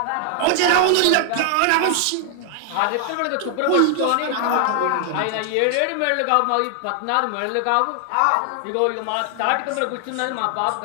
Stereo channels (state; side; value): different; both; correlation 0.00